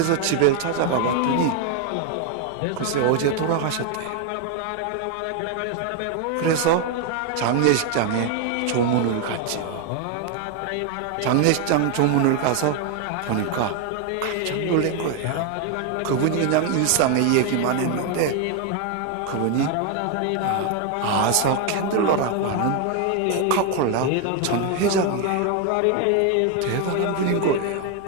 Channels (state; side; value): different; both; correlation 0.01